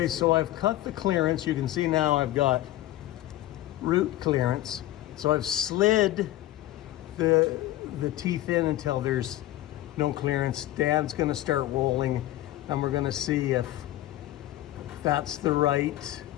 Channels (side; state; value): right; quieter; 15.0 dB